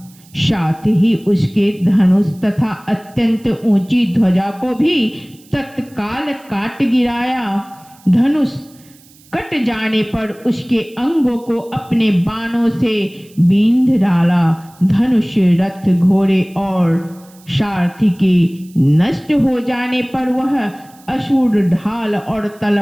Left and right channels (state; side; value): noise; right; hiss, 27 dB below the sound